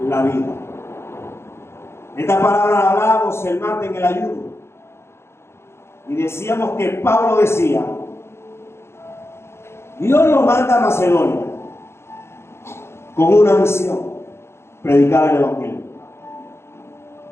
la vida. Esta palabra hablábamos el martes en el ayuno. Y decíamos que Pablo decía: Dios lo manda a Macedonia con una misión: predicar el evangelio.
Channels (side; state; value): right; late; 0.12 ms